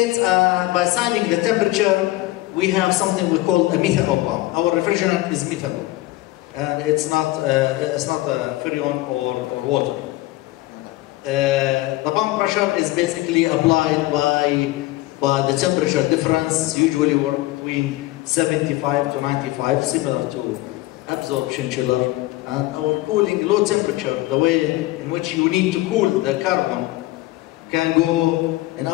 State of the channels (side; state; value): right; quieter; 18.1 dB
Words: by assigning the temperature, we have something we call a methanol pump. Our refrigerant is methanol, and it's not freon or water. The pump pressure is basically applied by the temperature difference, usually we're between 75 to 95, similar to absorption chiller. And our cooling, low temperature, the way in which you need to cool the carbon, can go, in